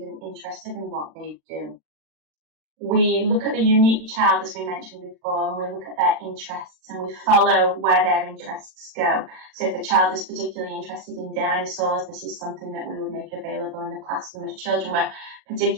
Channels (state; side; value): late; left; 39 ms